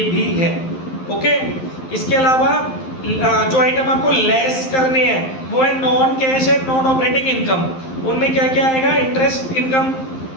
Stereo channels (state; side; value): late; right; 11 ms